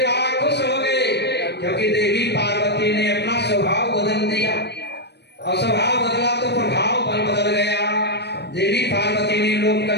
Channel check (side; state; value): right; late; 0.49 ms